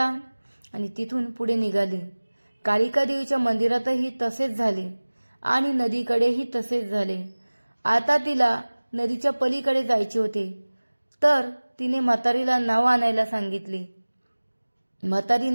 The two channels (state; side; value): inverted; both; correlation -1.00